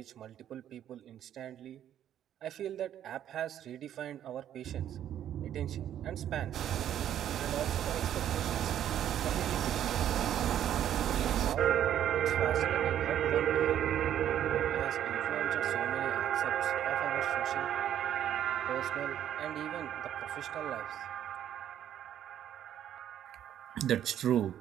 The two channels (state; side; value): quieter; left; 10.7 dB